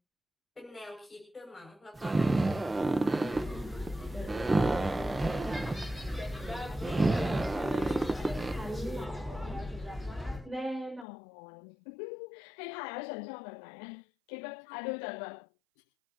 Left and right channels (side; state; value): right; drops out; at 11.1 s